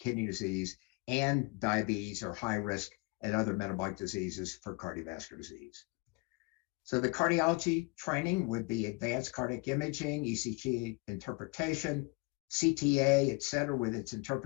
disease, and diabetes or high risk and other metabolic diseases for cardiovascular disease. So the cardiology training would be advanced cardiac imaging, ECG interpretation, CTA, et cetera, with its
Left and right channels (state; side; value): quieter; right; 27.5 dB